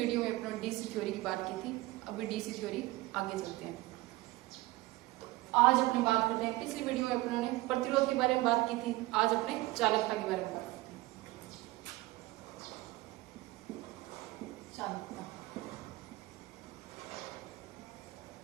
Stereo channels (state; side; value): quieter; left; 19.5 dB